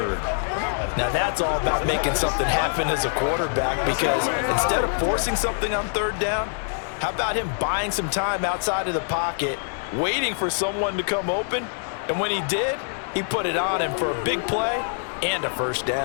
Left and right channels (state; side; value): silent; right; digital silence